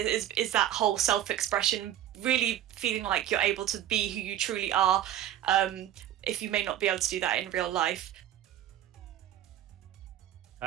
that whole self-expression, really feeling like you're able to be who you truly are, if you may not be able to do that in real life.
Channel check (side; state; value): left; quieter; 11.6 dB